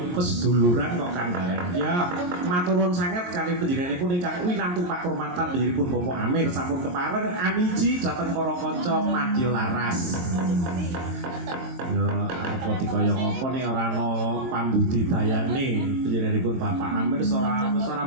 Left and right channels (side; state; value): left; late; 23 ms